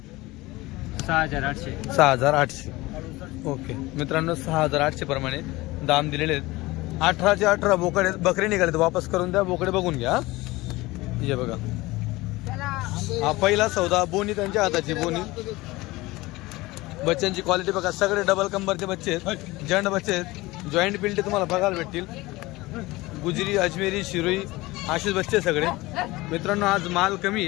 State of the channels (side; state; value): right; quieter; 20.4 dB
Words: 6,800. 6,800. ओके मित्रांनो, 6,800 प्रमाणे दाम दिलेले आहेत. 18चे 18 बोकडे बकरे निघाले, वापस करून द्या. बोकडे बघून घ्या. हे बघा, हा पहिला सौदा. बोनी त्यांच्या हाताची बोनी. बच्चांची क्वालिटी बघा, सगळे डबल कंबरचे बच्चे आहेत, जंड बच्चे आहेत. जॉईंट पिल्टे तुम्हाला बघायला भेटतील. गुजरी, अजमेरी, शिरोई असेच बच्चे सगळे. मित्रांनो आज माल कमी